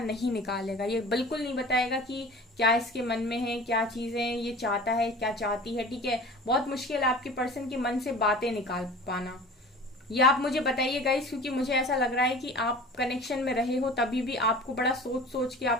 नहीं निकालेगा। ये बिल्कुल नहीं बताएगा कि क्या इसके मन में है, क्या चीजें ये चाहता है, क्या चाहती है। ठीक है, बहुत मुश्किल है आपके पर्सन के मन से बातें निकाल पाना। ये आप मुझे बताइए गाइस, क्योंकि मुझे ऐसा लग रहा है कि आप कनेक्शन में रहे हो तभी भी आपको बड़ा सोच सोच के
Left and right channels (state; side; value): normal; both; correlation 0.40